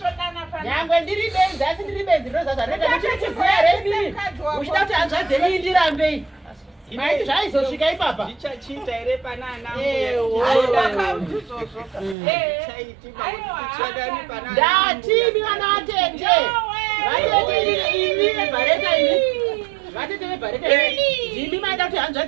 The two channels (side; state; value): left; drops out; at 12.2 s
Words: nyangwe ndiri benzi asi ndiri benzi ndinozaza anoita muchirichiziya rei uchida kuti hanzvadzenyi ndirambei maiti zvaizosvika ipapa ndichachita ere panana ndatimi vana vatete vatete vebhareta ndimi maida kuti hanzva